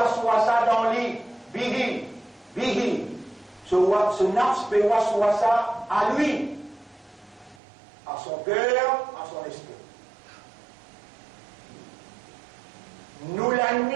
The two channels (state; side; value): drops out; left; at 7.6 s